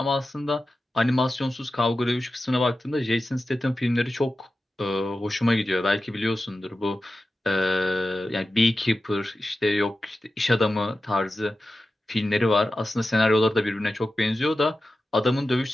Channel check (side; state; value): both; normal; correlation 0.93